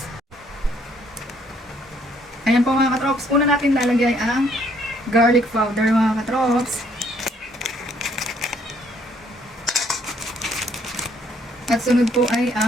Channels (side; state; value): both; normal; correlation 0.66